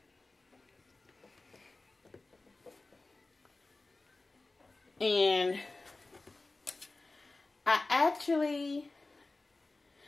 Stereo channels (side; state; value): right; quieter; 3.3 dB